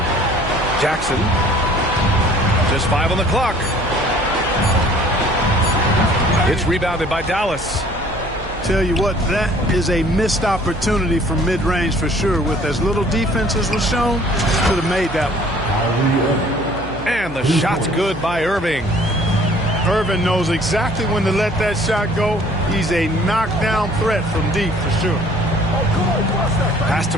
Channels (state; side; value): noise; right; hum, 14 dB below the sound